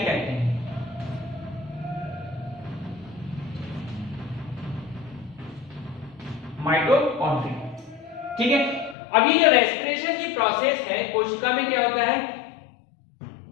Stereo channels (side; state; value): right; drops out; at 9.0 s